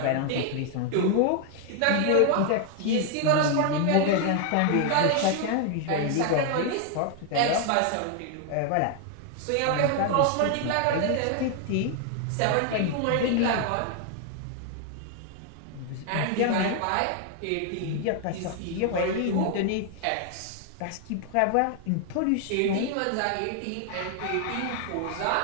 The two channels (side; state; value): both; different; correlation 0.00